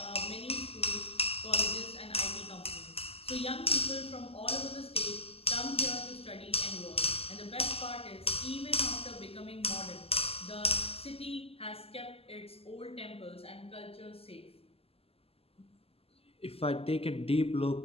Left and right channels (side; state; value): right; late; 0.29 ms